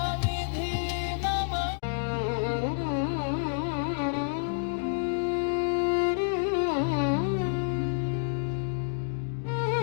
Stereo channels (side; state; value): right; silent; digital silence